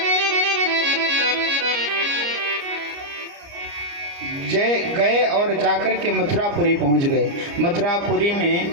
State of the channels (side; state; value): left; late; 29 ms